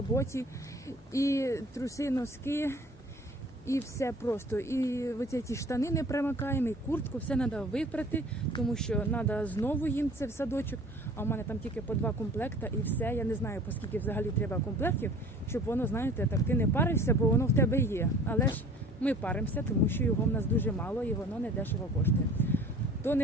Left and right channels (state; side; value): normal; both; correlation 0.47